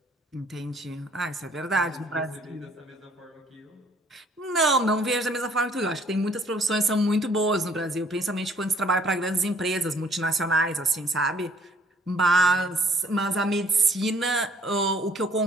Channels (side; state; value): both; normal; correlation 0.60